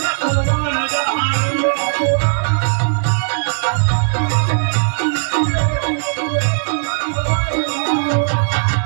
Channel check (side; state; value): left; silent; digital silence